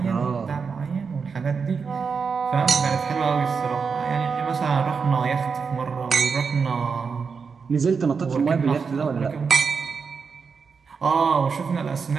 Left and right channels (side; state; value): left; quieter; 5.5 dB